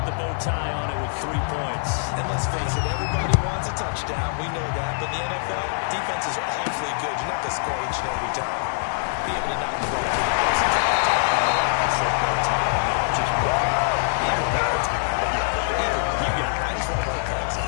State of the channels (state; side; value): silent; right; digital silence